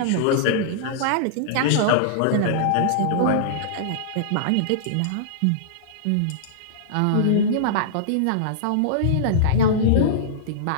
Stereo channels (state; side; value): different; both; correlation -0.02